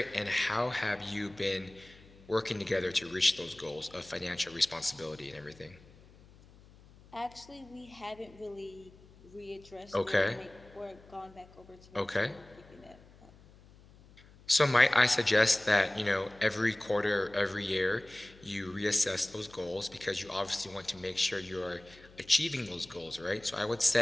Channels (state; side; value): noise; left; hum, 24 dB below the sound